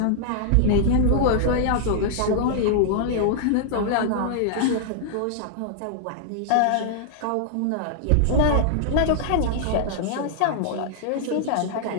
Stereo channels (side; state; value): both; different; correlation -0.01